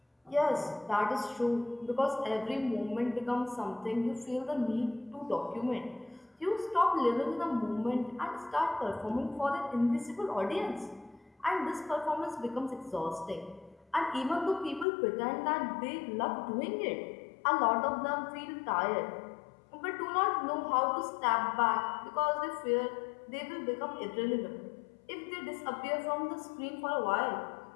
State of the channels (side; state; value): right; drops out; at 14.9 s